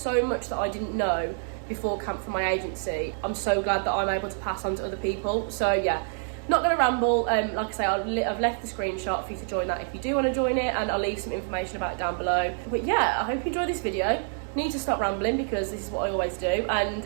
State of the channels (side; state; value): left; silent; 60 dB below the other